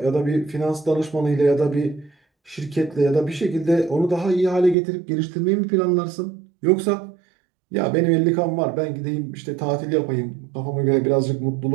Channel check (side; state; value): left; drops out; at 4.8 s